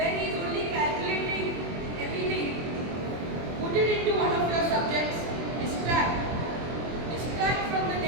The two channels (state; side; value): late; left; 24 ms